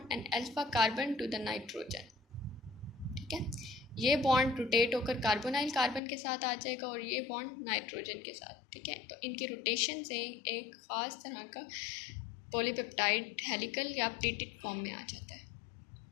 and alpha carbon to the nitrogen, ठीक है। ये बॉन्ड रोटेट होकर कार्बोनाइल कार्बन के साथ आ जाएगा और ये बॉन्ड नाइट्रोजन के साथ, ठीक है। तो इनके रोटेशन से एक ख़ास तरह का पॉलीपेप्टाइड हेलिकल या प्लेटेड फॉर्म में आ जाता है।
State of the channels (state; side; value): drops out; right; at 6.0 s